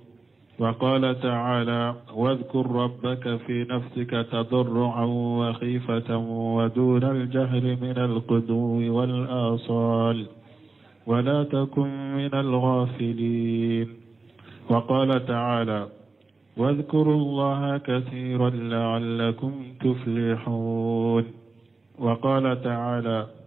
وقال تعالى: واذكر ربك في نفسك تضرعا وخيفة ودون الجهر من الغدو والآصال ولا تكن من الغافلين. وقال تعالى: واذكروا الله كثيرا لعلكم تفلحون. وقال تعالى:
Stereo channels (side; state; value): left; quieter; 3.6 dB